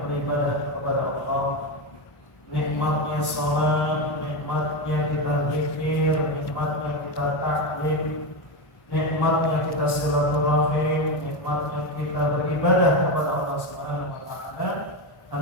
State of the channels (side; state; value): right; late; 1.1 ms